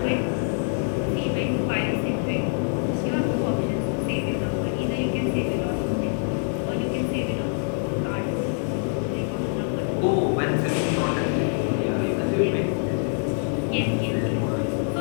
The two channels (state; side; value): silent; right; 62 dB below the other